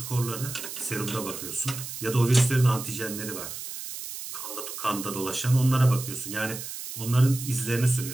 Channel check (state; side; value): noise; right; hiss, 9 dB below the sound